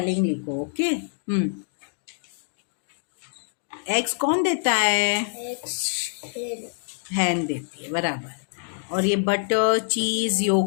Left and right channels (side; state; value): right; silent; digital silence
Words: लिखो. ओके. एग्स कौन देता है? Eggs. Hen. हैन देती है, बराबर। और ये बटर, चीज,